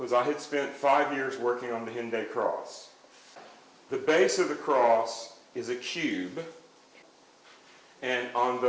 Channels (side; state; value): both; identical; correlation 1.00